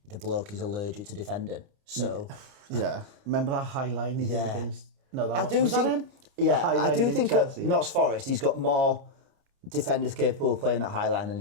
the bloke is allergic to defending. So yeah, remember that high line he did against? No, that was that him? Yeah, I do think at Notts Forest he's got more defenders capable of playing that high line than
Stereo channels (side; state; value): left; late; 29 ms